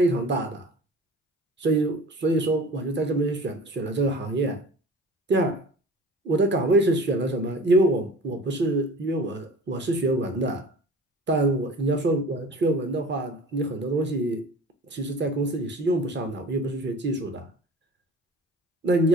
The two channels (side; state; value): both; normal; correlation 0.41